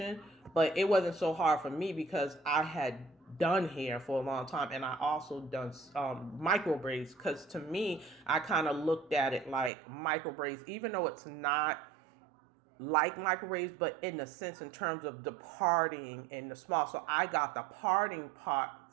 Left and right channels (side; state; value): left; drops out; at 9.7 s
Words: but it wasn't so hard for me, because I had done hair for a long time, and I also done micro braids, because to me, I kind of looked at it like micro braids, even though it's not like microwaves, but in the sense in terms of departing in the small. So I got the parting part